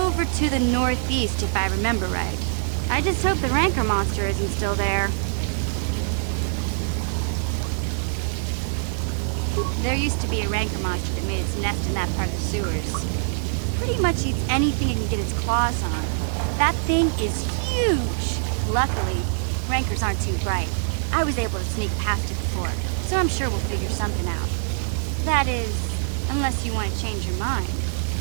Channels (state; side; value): silent; left; digital silence